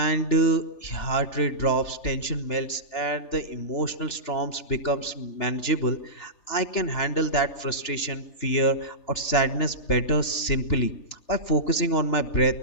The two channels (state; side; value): late; right; 3.3 ms